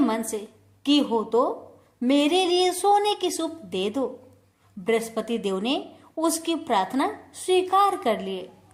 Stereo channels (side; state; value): both; identical; correlation 1.00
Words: से की हो तो मेरे लिए सोने की सूप दे दो। बृहस्पति देव ने उसकी प्रार्थना स्वीकार कर लिए।